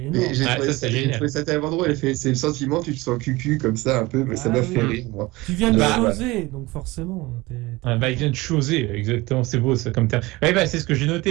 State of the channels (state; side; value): quieter; left; 21.3 dB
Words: Mais énorme. j'ai Ouais, trouvé ça, ça, c'est j'ai génial. trouvé ça tellement drôle. C'est le sentiment, tu te sens cucu comme ça un peu, mais ça Ah m'a oui. fait rire, moi. Tu viens de Bah, choser, donc forcément. bah, il vient de choser, exactement, c'est beau ça comme terme. Ouais, bah, c'est ce que j'ai